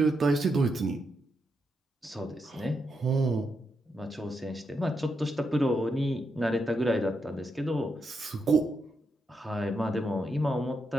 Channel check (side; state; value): both; normal; correlation 0.82